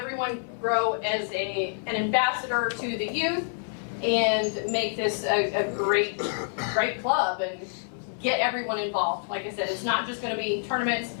grow as an ambassador to the youth, and make this a great club and get everyone involved. Like I said, it's not just gonna be tournaments.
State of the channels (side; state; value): right; silent; 60 dB below the other